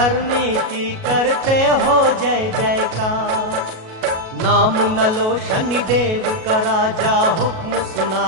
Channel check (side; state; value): left; late; 37 ms